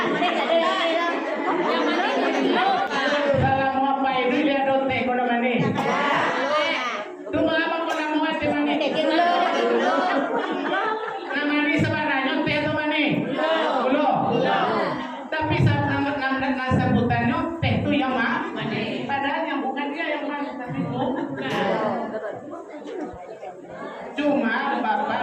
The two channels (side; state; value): both; identical; correlation 1.00